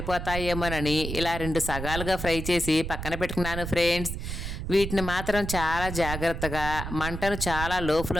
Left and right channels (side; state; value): right; noise; rumble, 6 dB below the sound